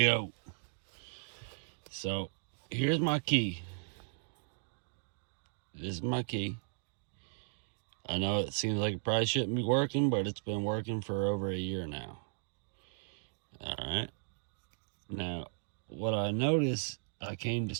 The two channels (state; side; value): silent; left; digital silence